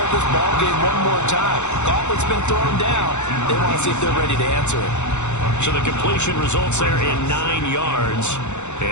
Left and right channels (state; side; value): late; right; 0.83 ms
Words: this ball game one more time. Gauntlet's been thrown down. They want to see if they're ready to answer it. So the completion results there in 9 yards.